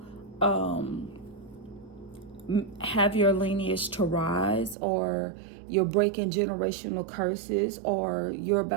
have your lineage to rise, or you're breaking generational curses, or you're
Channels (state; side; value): drops out; left; at 4.8 s